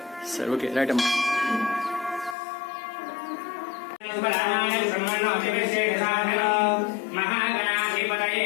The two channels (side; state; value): right; drops out; at 2.4 s